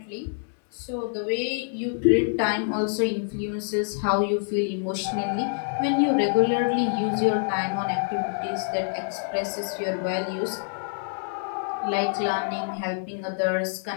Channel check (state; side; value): silent; right; digital silence